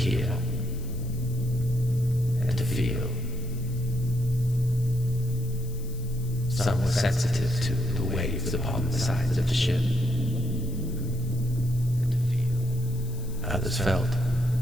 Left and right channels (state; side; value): noise; left; hiss, 20 dB below the sound